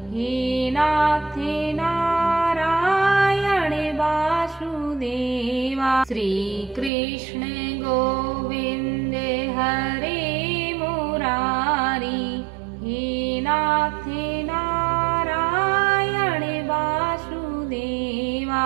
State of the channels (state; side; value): drops out; left; at 6.9 s